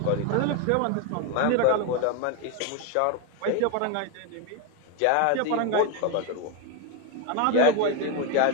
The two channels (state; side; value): different; both; correlation 0.02